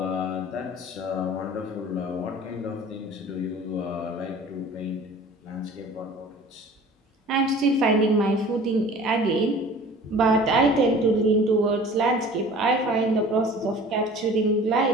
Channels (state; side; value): normal; both; correlation 0.45